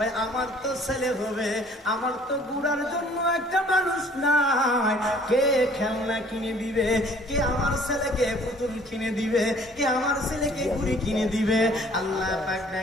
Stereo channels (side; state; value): both; normal; correlation 0.55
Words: আমার তো ছেলে হবে, আমার তো গুড়ার জন্য একটা মানুষ নাই। কে খেলনা কিনে দিবে? কে আমার ছেলেকে পুতুল কিনে দিবে? কে আমার ছেলেকে ঘুড়ি কিনে দিবে? আল্লাহ পাক